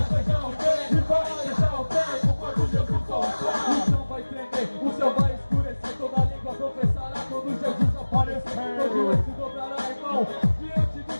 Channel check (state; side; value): inverted; both; correlation -1.00